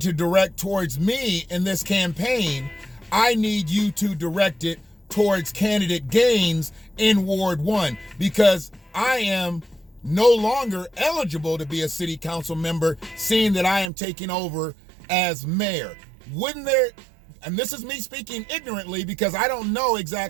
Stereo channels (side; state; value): left; drops out; at 13.9 s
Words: direct towards me in this campaign, I need you to direct it towards candidate Gaines in Ward 1, because I am no longer eligible to be a city council member, seeing that I am taking over as mayor. Wouldn't there, and this is me speaking ignorantly because I don't know